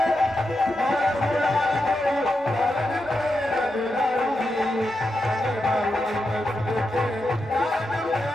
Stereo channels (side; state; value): both; normal; correlation 0.87